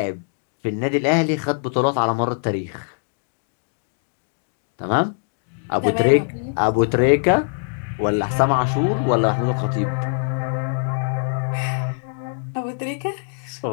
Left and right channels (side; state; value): right; silent; digital silence